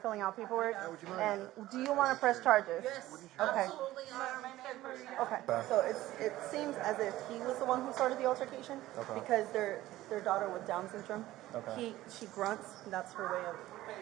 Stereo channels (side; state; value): left; quieter; 15.8 dB